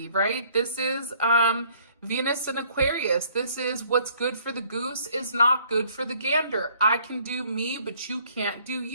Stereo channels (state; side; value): inverted; both; correlation -0.60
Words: right? This is Venus in Aquarius. This is what's good for the goose is not good for the gander. I can do me, but you can't do